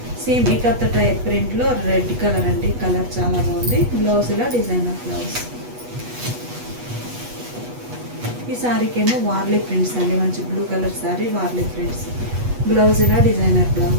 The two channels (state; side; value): late; left; 8.2 ms